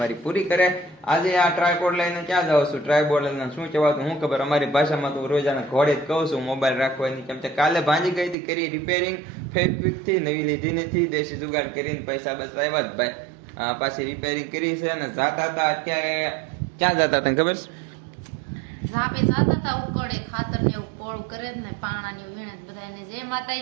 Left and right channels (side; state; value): left; drops out; at 8.3 s